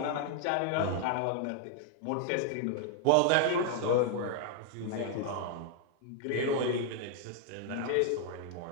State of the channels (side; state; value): both; different; correlation 0.00